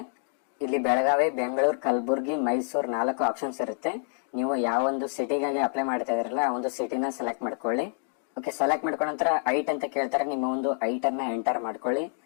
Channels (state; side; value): silent; right; 60 dB below the other